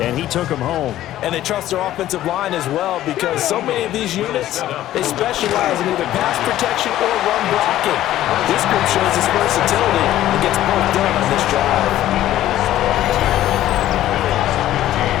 and he took them home. And they trust their offensive line as well because so many of these units, they specialize in either pass protection or run blocking. This group shows its versatility and gets both done on this drive.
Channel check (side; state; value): right; quieter; 13.5 dB